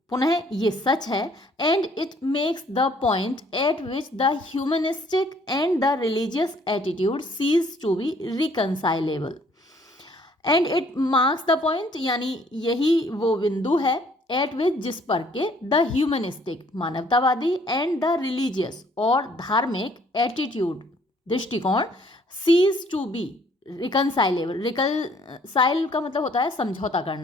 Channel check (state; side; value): normal; both; correlation 0.61